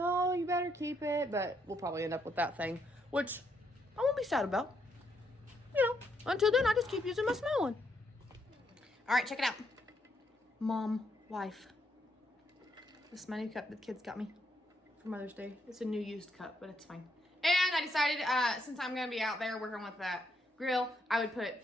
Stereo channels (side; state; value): both; normal; correlation 0.76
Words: you better keep it. But we'll probably end up with that thing, which I won't be sad about. You know, until then, I just keep using my small one. All right, check it out. Mom, wife. This is my new cup that the kids got me for Mother's Day. It's a new used cup, but it's fine. And I decided, since I'm going to be out there working with that grill, I would put